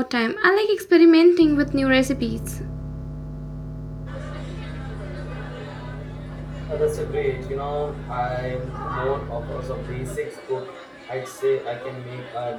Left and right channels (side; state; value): both; identical; correlation 1.00